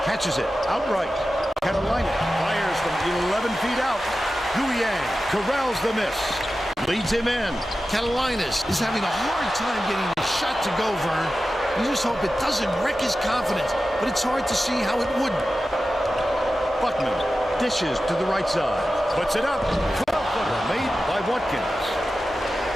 Catches it outright. Carolina fires from 11 feet out. Guyang corrals the miss. Leads him in. Carolinas is having a hard time getting the shot to go, Vern. You just hope it doesn't wreck his confidence, but it's hard to see how it would. Buckman dishes to the right side. Puts it up. 12-footer made by Watkins.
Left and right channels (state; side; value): normal; both; correlation 0.93